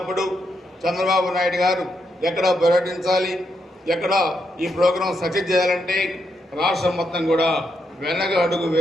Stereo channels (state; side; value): normal; both; correlation 0.81